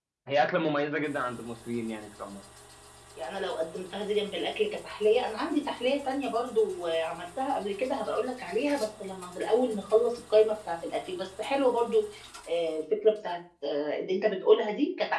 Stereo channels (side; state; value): both; identical; correlation 1.00